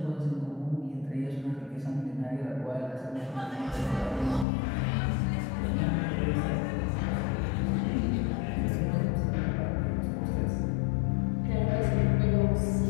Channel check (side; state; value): right; drops out; at 4.5 s